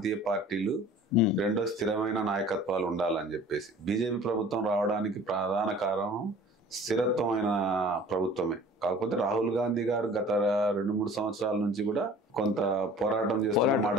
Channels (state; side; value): normal; both; correlation 0.47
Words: పార్టీలు, రెండో స్థిరమైన నాయకత్వాలు ఉండాలని చెప్పేసి బీజేపీ ప్రభుత్వం రావడానికి ప్రధాన కారణం స్థిరత్వమైన ప్రభుత్వమే. కాకపోతే రాహుల్ గాంధీ గారు గత 2-3 సంవత్సరాల నుంచి కూడా కొంత పోరాటం చేస్తున్న మాట